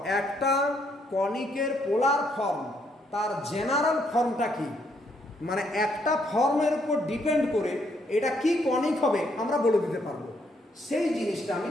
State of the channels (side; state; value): both; normal; correlation 0.72